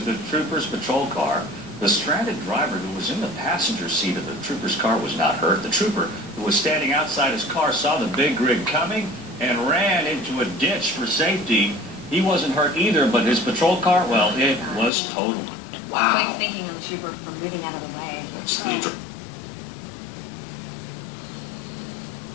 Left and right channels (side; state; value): right; drops out; at 14.9 s